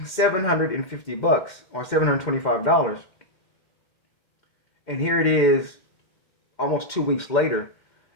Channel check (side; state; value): right; late; 2.1 ms